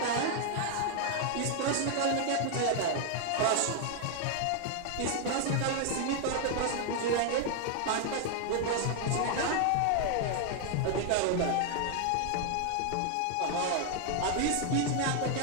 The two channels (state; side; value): different; both; correlation 0.00